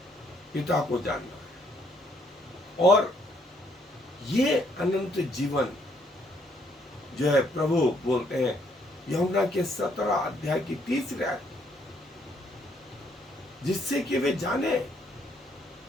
पिता को जानना है। और ये अनंत जीवन जो है प्रभु बोलते हैं यूहन्ना के 17 अध्याय की 30 आयत, जिससे कि वे जाने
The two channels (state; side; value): normal; both; correlation 0.69